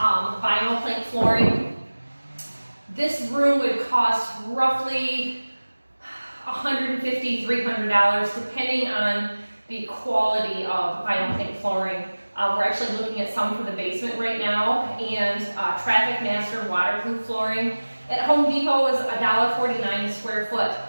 plank flooring, this room would cost roughly $150, $300, depending on the quality of vinyl plank flooring. We're actually looking at some for the basement right now, and Traffic Master waterproof flooring at Home Depot is $1.49 a square foot.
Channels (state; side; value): inverted; both; correlation -1.00